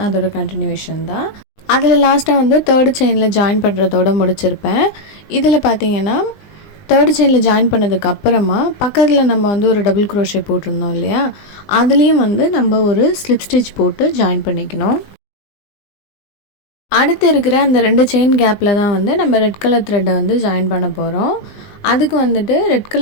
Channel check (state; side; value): late; right; 20 ms